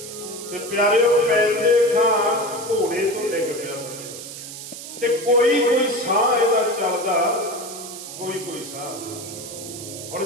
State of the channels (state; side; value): noise; right; hiss, 11 dB below the sound